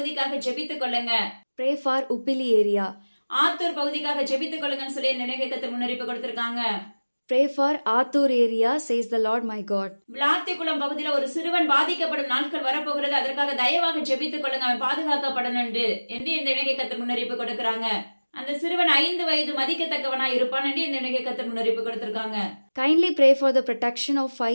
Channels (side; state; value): both; inverted; correlation -1.00